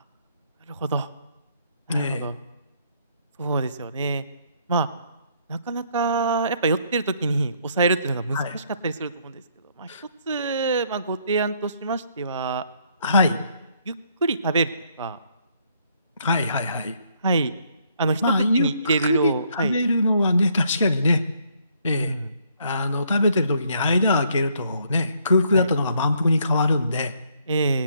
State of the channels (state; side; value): inverted; both; correlation -0.68